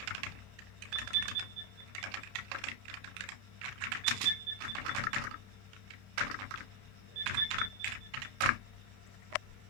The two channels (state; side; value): late; left; 31 ms